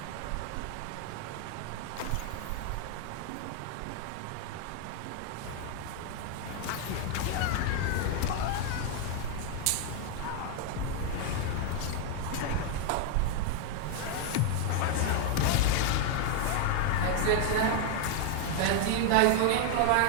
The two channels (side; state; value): both; different; correlation 0.00